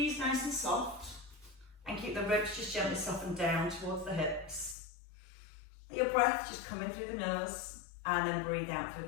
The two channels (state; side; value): drops out; right; at 4.8 s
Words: nice and soft, and keep the ribs just gently softened down towards the hips. Let your breath just come in through the nose, and then breathe out through